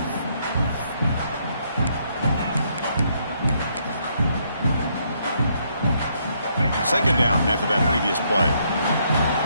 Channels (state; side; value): inverted; both; correlation -0.72